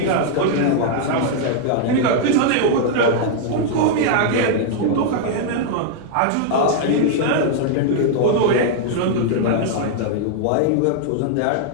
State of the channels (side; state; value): both; different; correlation 0.00